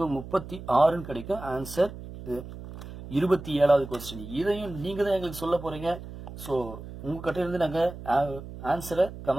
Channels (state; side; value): noise; right; hum, 12 dB below the sound